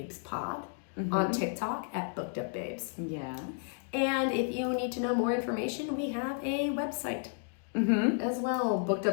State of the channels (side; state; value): right; silent; 56 dB below the other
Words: on TikTok at BookedUpBabes. Yeah. And if you need to know more information, we have a website as well,